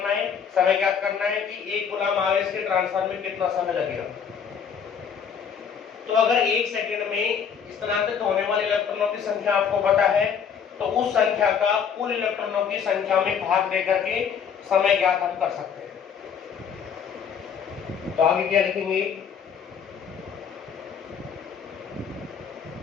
है, समय ज्ञात करना है कि 1 कूलम आवेश के ट्रांसफर में कितना समय लगेगा। तो अगर 1 सेकंड में स्थानांतरित होने वाले इलेक्ट्रॉनों की संख्या आपको पता है तो उस संख्या का कुल इलेक्ट्रॉनों की संख्या में भाग देकर के समय ज्ञात हम कर सकते हैं। तो आगे क्या लिखेंगे,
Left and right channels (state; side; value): quieter; right; 7.2 dB